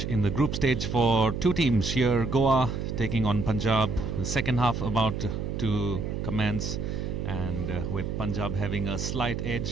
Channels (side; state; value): right; noise; hum, 3 dB below the sound